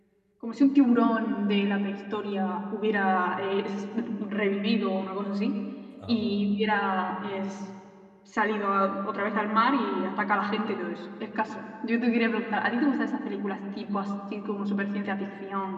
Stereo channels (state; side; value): identical; both; correlation 1.00